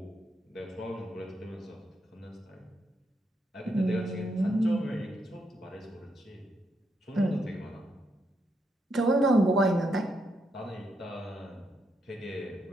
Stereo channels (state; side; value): normal; both; correlation 0.80